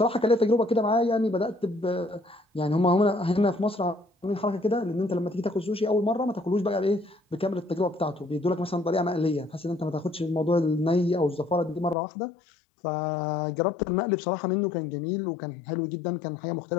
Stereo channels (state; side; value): drops out; right; at 12.0 s